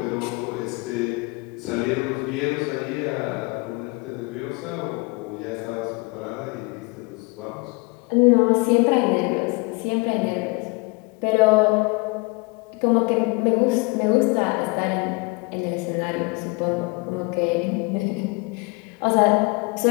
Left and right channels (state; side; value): quieter; right; 27.8 dB